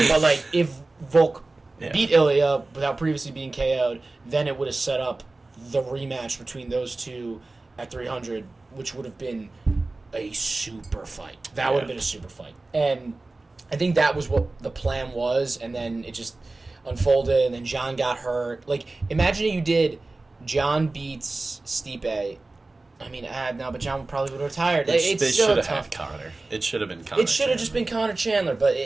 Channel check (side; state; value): left; quieter; 3.2 dB